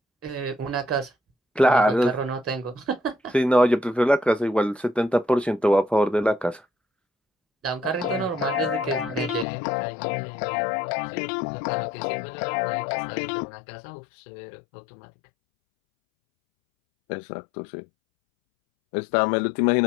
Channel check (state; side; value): drops out; right; at 9.5 s